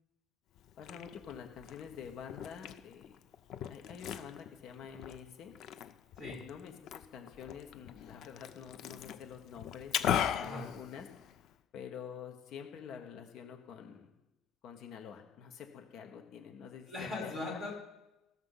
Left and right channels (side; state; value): right; quieter; 7.8 dB